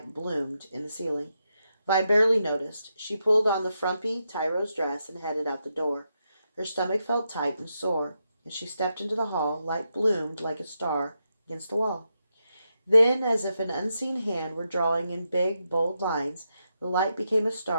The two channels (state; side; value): inverted; both; correlation -0.85